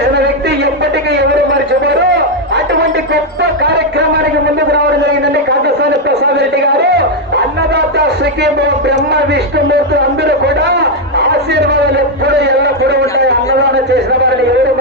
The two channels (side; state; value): both; normal; correlation 0.02